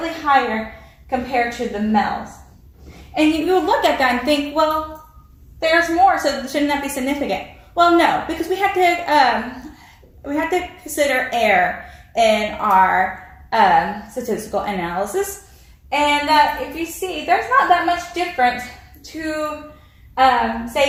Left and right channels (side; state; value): both; identical; correlation 1.00